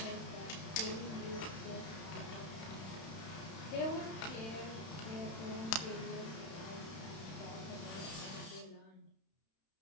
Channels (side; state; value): right; late; 31 ms